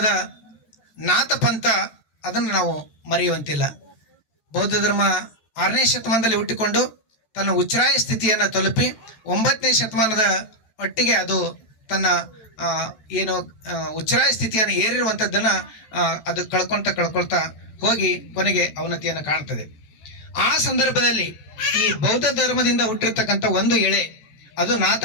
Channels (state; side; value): late; right; 14 ms